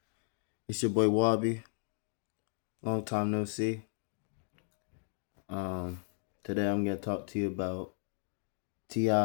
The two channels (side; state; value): right; silent; digital silence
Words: It's your boy Wabi. Long time no see. Um, Today I'm gonna talk to you about